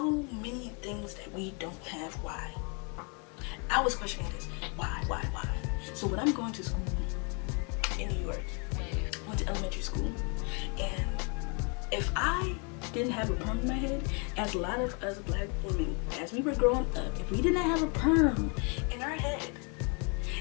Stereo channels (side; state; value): right; quieter; 35.2 dB